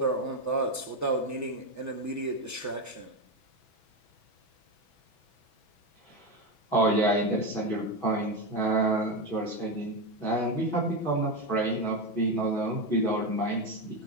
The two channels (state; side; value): late; right; 6.1 ms